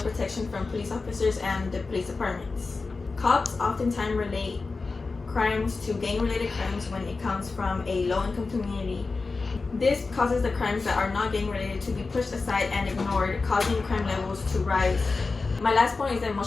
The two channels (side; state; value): right; quieter; 4.0 dB